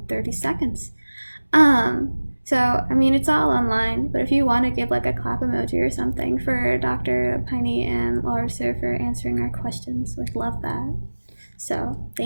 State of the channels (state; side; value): inverted; both; correlation -1.00